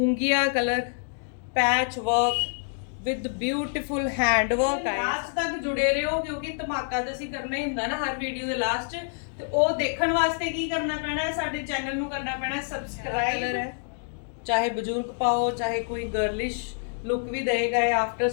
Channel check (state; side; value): silent; right; digital silence